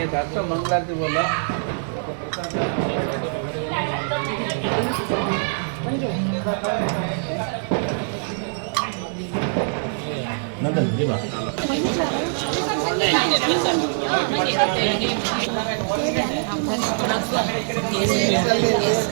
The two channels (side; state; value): left; silent; digital silence